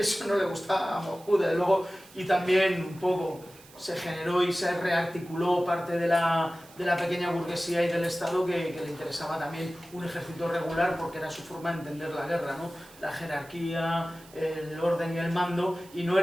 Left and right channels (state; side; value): noise; right; hiss, 23 dB below the sound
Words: no le gustaba a Moscú, desde luego, y también un poco se generó y se rearticuló parte de la pequeña burguesía y del Estado que le interesaba también un ejército regular, porque era su forma de entender la guerra, ¿no? La jerarquía, el orden y el mando, y no